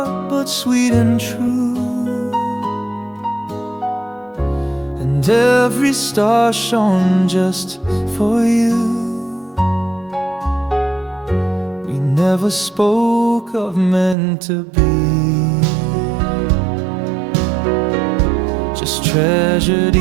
but sweet and true, and every star shone just for you. We never spoke of meant to be, just treasured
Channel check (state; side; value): drops out; left; at 14.2 s